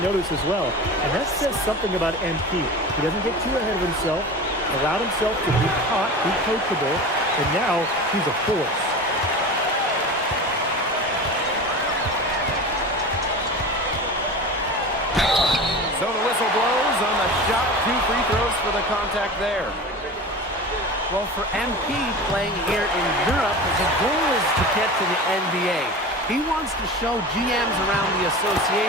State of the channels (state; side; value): normal; both; correlation 0.32